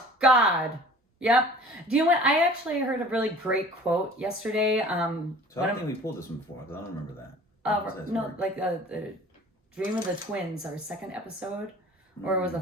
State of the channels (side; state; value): both; normal; correlation 0.46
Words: God. Yep. Do you know what? I actually heard a really great quote yesterday. So I don't think we pulled this one before, because I don't remember that. No, work. Like the Dream of the Twins, our second episode. Or was the